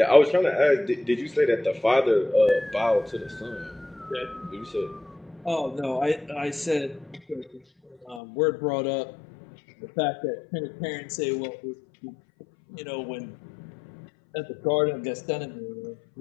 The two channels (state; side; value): drops out; right; at 8.2 s